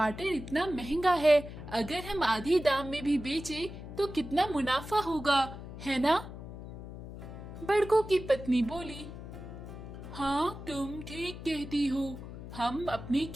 इतना महंगा है, अगर हम आधी दाम में भी बेचे तो कितना मुनाफा होगा, है ना? बड़कू की पत्नी बोली, हाँ तुम ठीक कहती हो, हम अपने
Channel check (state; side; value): noise; left; hum, 11 dB below the sound